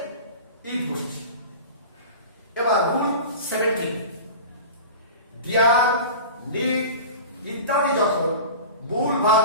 ইট বসেছে। এবার রুল 17, ডিয়ার, নিড ইত্যাদি যখন মূল ভাব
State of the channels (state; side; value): inverted; both; correlation -0.34